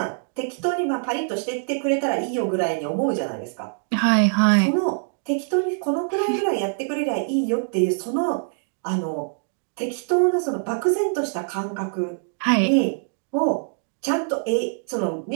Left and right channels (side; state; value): left; silent; 63 dB below the other